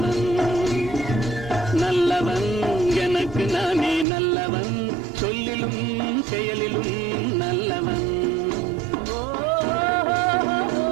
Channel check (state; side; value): drops out; left; at 4.0 s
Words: நல்லவன் எனக்கு நானே நல்லவன் சொல்லிலும் செயலிலும் நல்லவன்